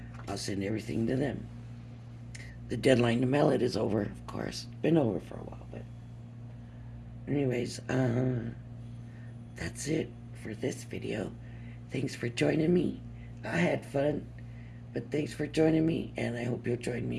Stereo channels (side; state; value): both; identical; correlation 1.00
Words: I'll send everything to them. The deadline to mail it is over, of course. Been over for a while, but anyways, that's it for this video. Thanks for joining me. I had fun, but thanks for joining me, and I hope you'll join me